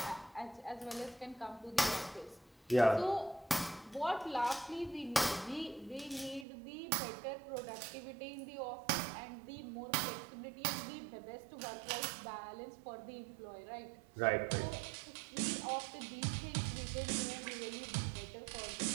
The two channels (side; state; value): left; drops out; at 6.5 s